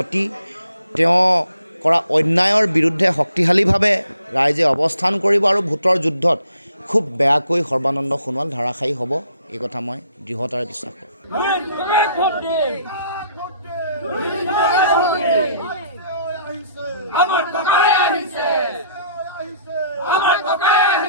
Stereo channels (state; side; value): inverted; both; correlation -0.64